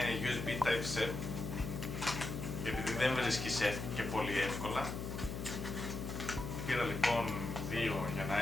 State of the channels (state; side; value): noise; left; hum, 5 dB below the sound